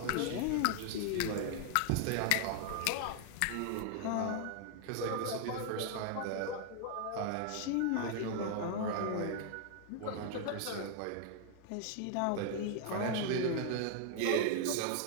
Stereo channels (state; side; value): different; both; correlation 0.00